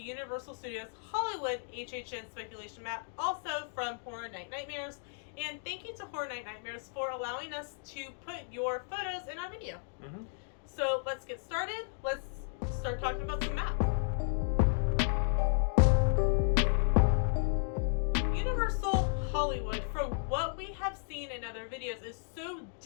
Studios Hollywood HHN speculation map, also from Horror Night Nightmares. And thank you to Horror Night Nightmares for allowing us to put your photos in our video. So let's get started. Let's start talking about some maps. Universal Hollywood, from what we have seen in other videos, is so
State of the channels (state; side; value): silent; right; 55 dB below the other